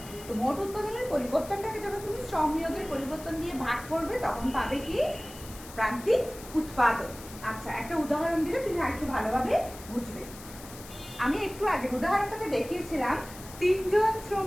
তো মোট উৎপাদনের পরিবর্তনটাকে যখন তুমি শ্রম নিয়োগের পরিবর্তন দিয়ে ভাগ করবে তখন পাবে কি প্রান্তিক উৎপাদন। আচ্ছা, একটা উদাহরণ দিলে তুমি আরেকটু ভালোভাবে বুঝবে। আমি একটু আগে উদাহরণটাতে দেখিয়েছিলাম 3জন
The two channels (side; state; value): left; noise; hiss, 16 dB below the sound